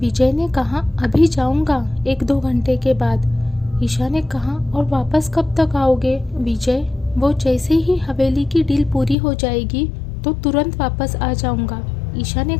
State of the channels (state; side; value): drops out; right; at 9.2 s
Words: ने कहा, अभी जाऊँगा 1-2 घंटे के बाद। ईशा ने कहा, और वापस कब तक आओगे? विजय, वो जैसे ही हवेली की डील पूरी हो जाएगी तो तुरंत वापस आ जाऊँगा। ईशा ने